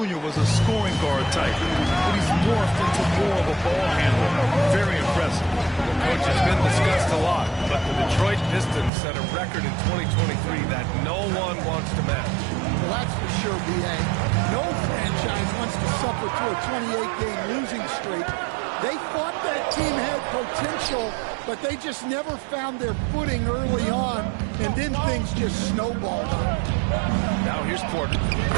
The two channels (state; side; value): drops out; left; at 8.9 s